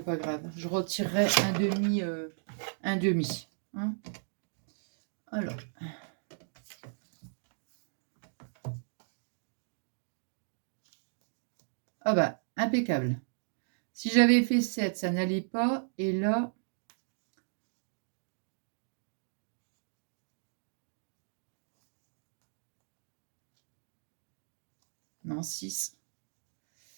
pas grave. Je retirerai un demi. Un demi. Hein. Alors. Ah bah, impeccable. Si j'avais fait 7, ça n'allait pas. Et là, Non, 6.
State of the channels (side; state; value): left; silent; digital silence